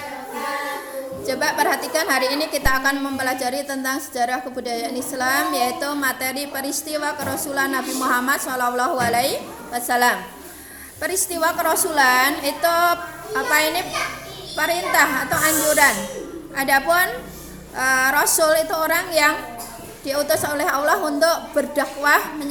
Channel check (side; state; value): both; identical; correlation 1.00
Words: Coba perhatikan, hari ini kita akan mempelajari tentang sejarah kebudayaan Islam, yaitu materi peristiwa kerasulan Nabi Muhammad SAW. Peristiwa kerasulan itu perintah atau anjuran. Adapun Rasul itu orang yang diutus oleh Allah untuk berdakwah